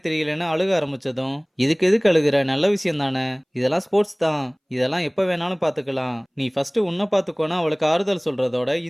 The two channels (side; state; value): both; identical; correlation 1.00